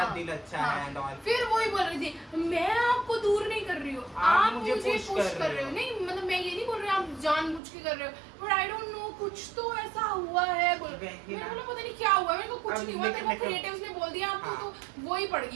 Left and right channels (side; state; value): left; drops out; at 7.6 s